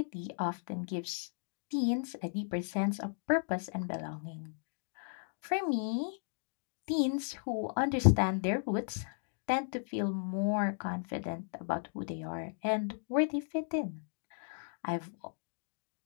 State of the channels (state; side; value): silent; right; digital silence